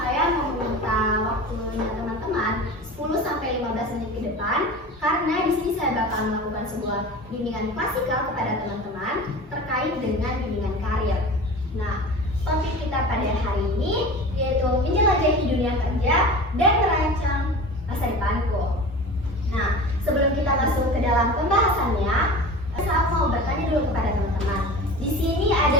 mau meminta waktunya teman-teman 10-15 menit ke depan, karena di sini saya bakal melakukan sebuah bimbingan klasikal kepada teman-teman terkait dengan bimbingan karir. Nah, topik kita pada hari ini yaitu menjelajahi dunia kerja dan merancang masa depanku. Nah, sebelum kita masuk ke dalam pembahasannya, saya mau bertanya dulu kepada teman-teman. Di sini ada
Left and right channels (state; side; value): normal; both; correlation 0.34